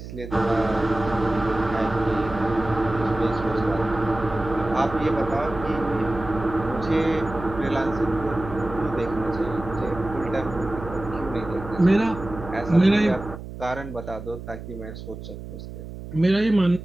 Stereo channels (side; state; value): right; noise; hum, 11 dB below the sound